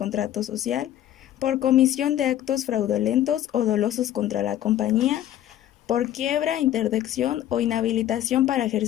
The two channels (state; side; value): quieter; right; 12.1 dB